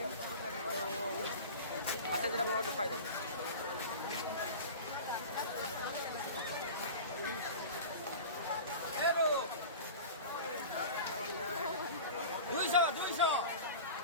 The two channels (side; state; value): both; inverted; correlation -0.33